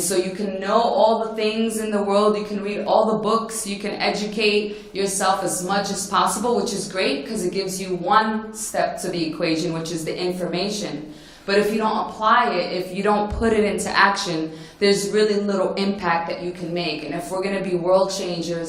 so you can know all the things in the world, you can read all the books, you can educate yourself as much as possible, which is great because it gives you one step to the equation, which is the information. But if you don't apply it, if you don't put it into action, there's really little impact that you can make. And if we're going to be world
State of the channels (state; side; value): identical; both; correlation 1.00